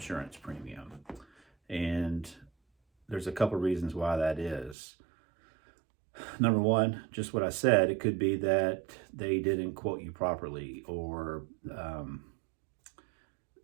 premium. And there's a couple reasons why that is. Number one, just what I said, it could be that they didn't quote you properly, or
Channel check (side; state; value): left; drops out; at 4.8 s